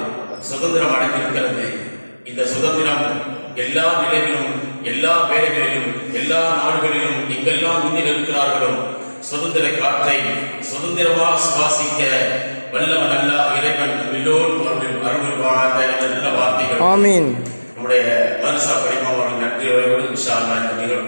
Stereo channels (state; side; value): inverted; both; correlation -1.00